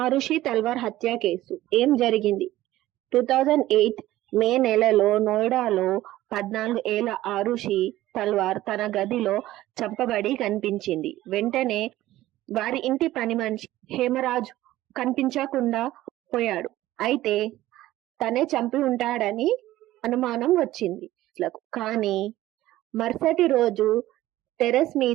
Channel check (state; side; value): quieter; left; 15.5 dB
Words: తల్వార్ హత్య కేసు ఏం జరిగింది? 2008 మే నెలలో నోయిడాలో 14 ఏళ్ల ఆరుషి తల్వార్ తన గదిలో చంపబడి కనిపించింది. వెంటనే వారి ఇంటి పని మనిషి హేమరాజ్ కనిపించకుండా పోయాడు. అయితే తనే చంపి ఉంటాడని అనుమానం వచ్చింది. కానీ మరుసటి రోజు టెర్రస్